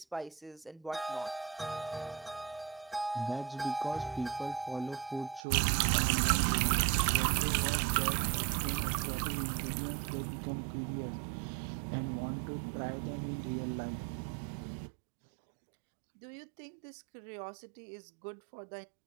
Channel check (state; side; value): drops out; left; at 5.4 s